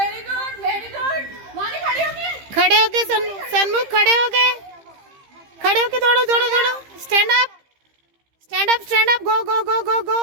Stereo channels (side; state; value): left; late; 15 ms